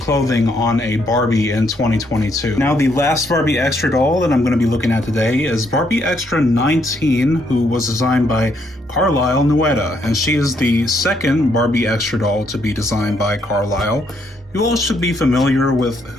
on a Barbie in 2022. Now, the last Barbie Extra doll that I'm going to be looking at today is Barbie Extra 19, who was designed by Carlisle Nuetta, and she is the second Barbie Extra doll to be designed by Carlisle. You all should be familiar with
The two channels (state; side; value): normal; both; correlation 0.73